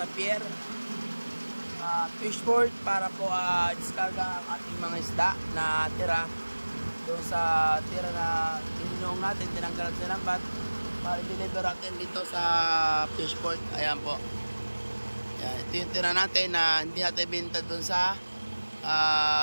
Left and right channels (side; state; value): both; inverted; correlation -1.00